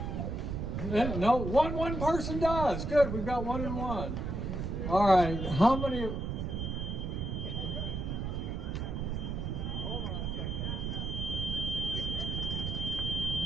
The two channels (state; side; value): noise; right; rumble, 3 dB below the sound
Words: No, one person does. Good, we've got 1 and 1. All right, how many?